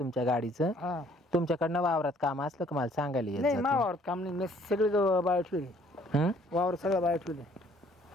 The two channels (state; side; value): normal; both; correlation 0.60